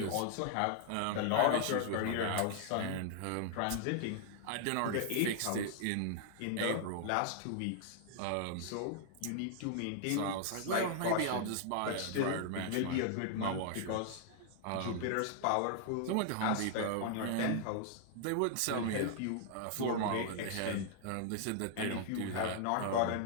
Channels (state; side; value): different; both; correlation -0.01